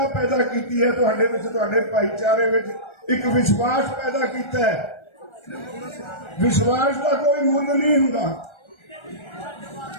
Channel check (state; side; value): late; right; 1.3 ms